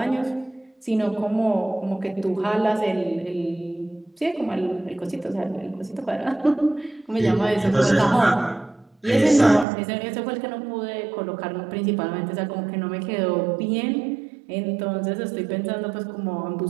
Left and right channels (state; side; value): drops out; left; at 9.7 s